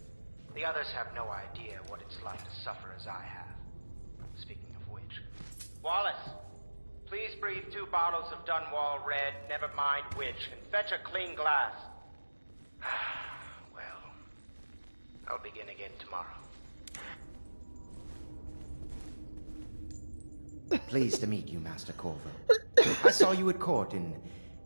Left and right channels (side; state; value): both; inverted; correlation -1.00